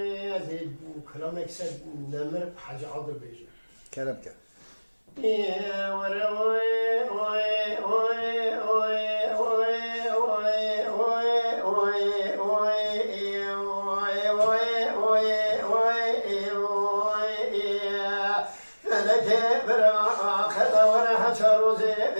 كلام يكسب نمر حاجة عضل بيجي کرم که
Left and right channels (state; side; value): inverted; both; correlation -1.00